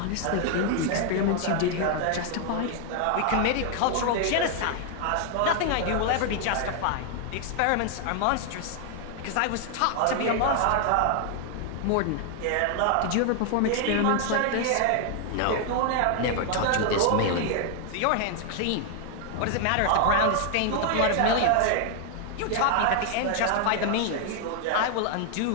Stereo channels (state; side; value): different; both; correlation 0.00